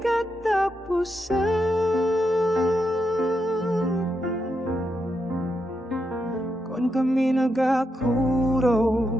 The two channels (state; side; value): normal; both; correlation 0.83